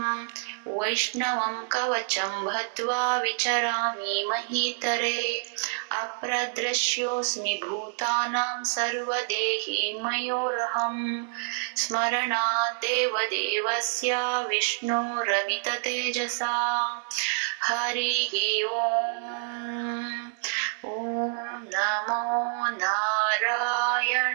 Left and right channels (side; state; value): left; silent; 60 dB below the other